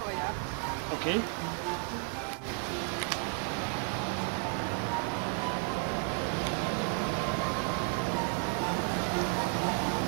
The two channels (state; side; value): quieter; left; 38.4 dB